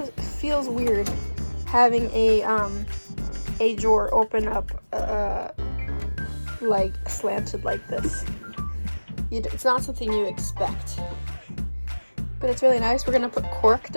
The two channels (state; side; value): inverted; both; correlation -1.00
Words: weird having a drawer open up like slanted like this. It's not something you expect, but it's really nice. We're gonna put cork